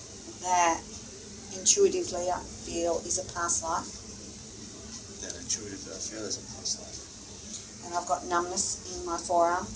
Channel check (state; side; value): identical; both; correlation 1.00